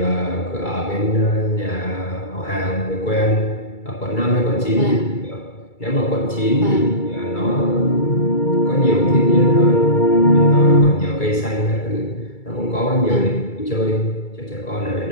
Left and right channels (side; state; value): right; late; 2.3 ms